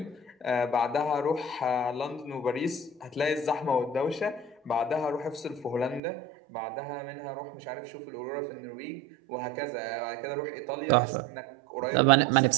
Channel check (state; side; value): drops out; left; at 6.0 s